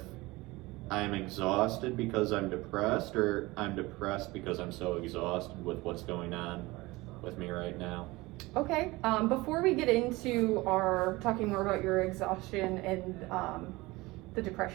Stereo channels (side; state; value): left; quieter; 21.3 dB